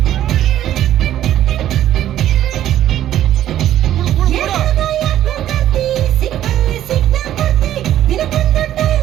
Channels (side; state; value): left; quieter; 12.1 dB